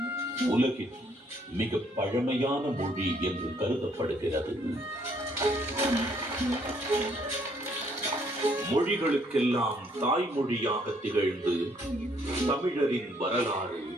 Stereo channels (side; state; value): both; normal; correlation 0.67